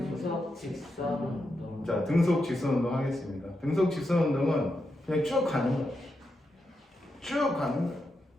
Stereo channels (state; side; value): normal; both; correlation 0.86